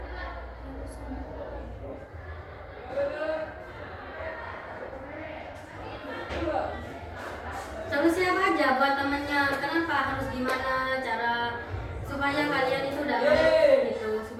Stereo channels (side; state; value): both; identical; correlation 1.00